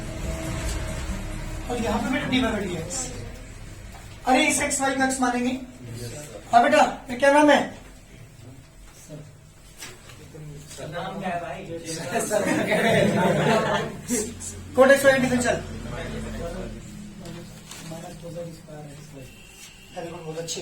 और यहाँ पे बेटा d by dx। अरे इस एक्स वाई को एक्स मानेंगे। हाँ बेटा ये क्या नाम है? नाम क्या है भाई? कोट एक्स वाई डिफरेंशियल बहुत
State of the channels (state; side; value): identical; both; correlation 1.00